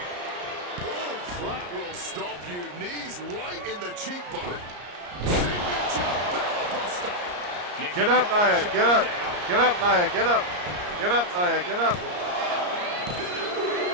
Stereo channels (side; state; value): left; late; 34 ms